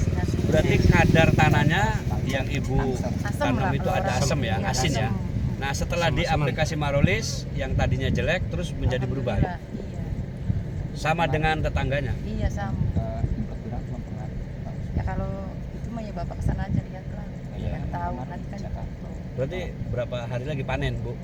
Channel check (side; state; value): both; identical; correlation 1.00